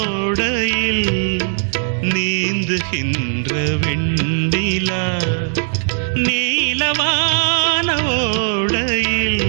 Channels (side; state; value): left; silent; digital silence